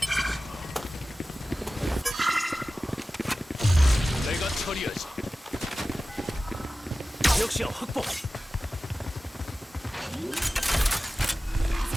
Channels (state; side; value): normal; both; correlation 0.96